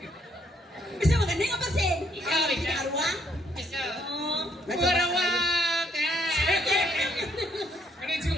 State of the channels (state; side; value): normal; both; correlation 0.69